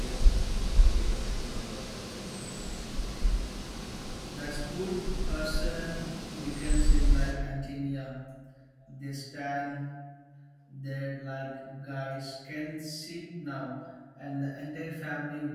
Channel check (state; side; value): identical; both; correlation 1.00